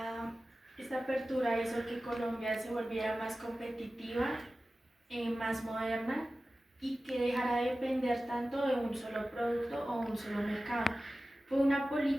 esta apertura hizo que Colombia se volviera más competitiva, más moderna y que dejara de depender tanto de un solo producto o un solo mercado. Fue una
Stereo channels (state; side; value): normal; both; correlation 0.95